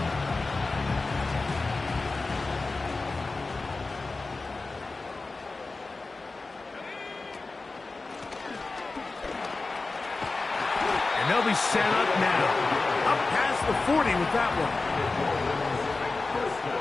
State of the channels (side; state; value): right; quieter; 3.6 dB